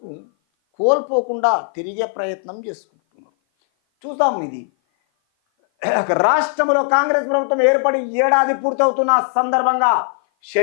కోల్పోకుండా తిరిగే ప్రయత్నం చేసుకుంటున్నాం. చూద్దాం. ఇది రాష్ట్రంలో కాంగ్రెస్ ప్రభుత్వం ఏర్పడి ఏడాది పూర్తవుతున్న సందర్భంగా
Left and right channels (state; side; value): silent; right; 57 dB below the other